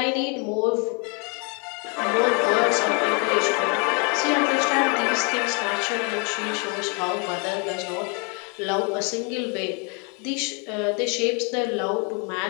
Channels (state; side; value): quieter; right; 35.2 dB